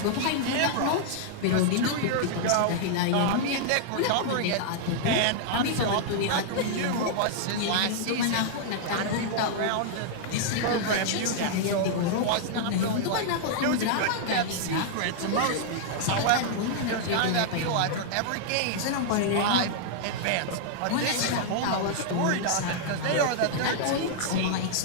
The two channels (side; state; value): both; different; correlation -0.01